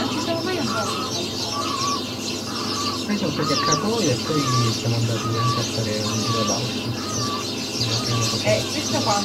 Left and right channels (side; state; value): both; identical; correlation 1.00